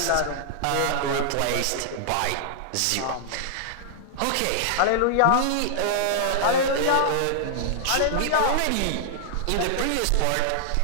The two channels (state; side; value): different; both; correlation -0.01